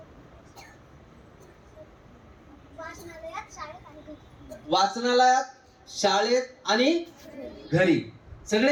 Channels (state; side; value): identical; both; correlation 1.00